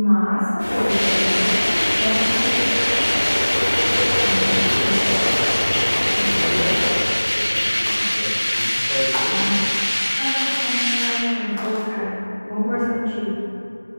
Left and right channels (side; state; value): both; inverted; correlation -1.00